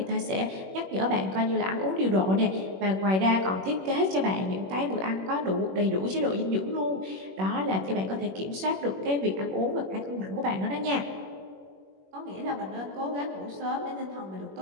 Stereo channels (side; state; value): left; late; 21 ms